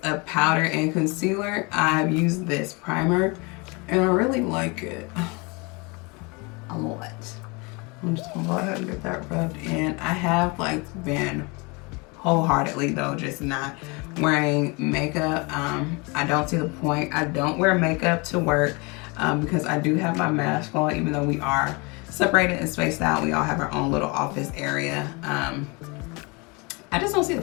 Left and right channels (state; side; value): quieter; right; 28.7 dB